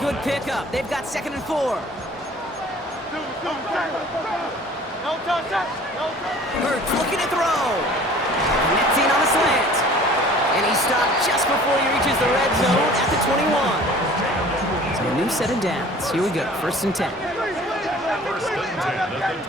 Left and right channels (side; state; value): both; normal; correlation 0.48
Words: pickup, they've got 2nd and 4. Hurts looking to throw. Connecting on the slant. And he stopped just before he reaches the red zone at the 21. So a new set of downs. Here we go, 1st and 10. First and 10 at the